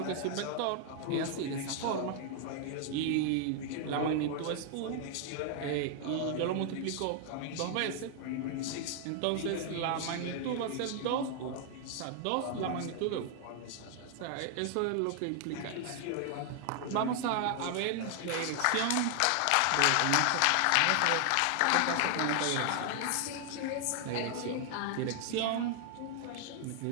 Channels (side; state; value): both; different; correlation 0.00